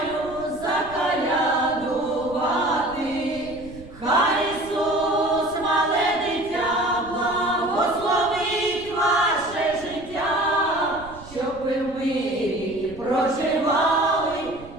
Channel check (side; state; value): right; noise; rumble, 18 dB below the sound